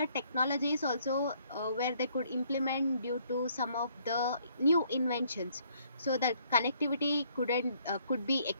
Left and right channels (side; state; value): both; inverted; correlation -0.66